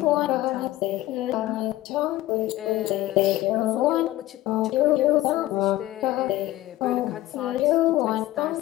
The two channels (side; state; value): right; quieter; 16.0 dB